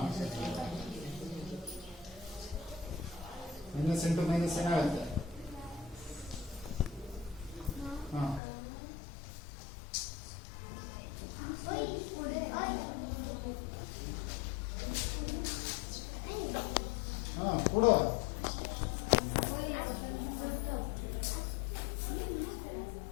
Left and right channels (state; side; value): drops out; right; at 8.4 s